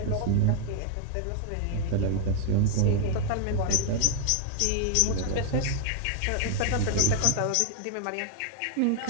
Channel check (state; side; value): different; both; correlation 0.00